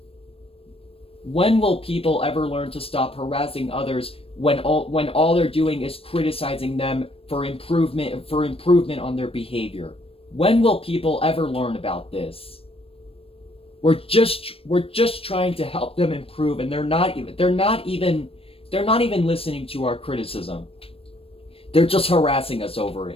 When will people ever learn to stop harassing others when all they're doing is criticizing them for improvement on their behavior? When will people ever learn about this? We're just trying to help them improve, and they're not even listening to our criticism. They're just harassing us over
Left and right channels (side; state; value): right; late; 0.28 ms